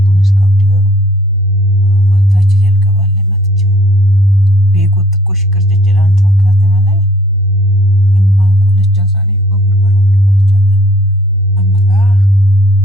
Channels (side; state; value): both; normal; correlation 0.58